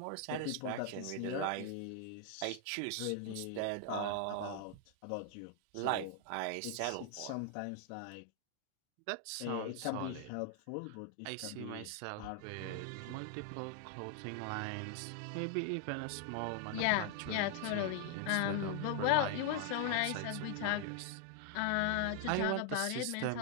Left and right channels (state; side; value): different; both; correlation 0.00